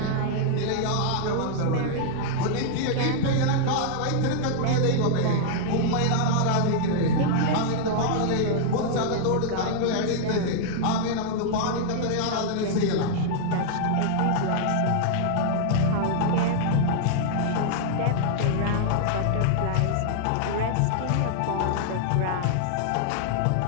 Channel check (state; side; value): different; both; correlation -0.01